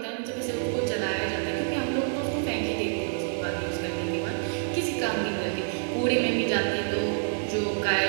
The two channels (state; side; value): silent; left; 60 dB below the other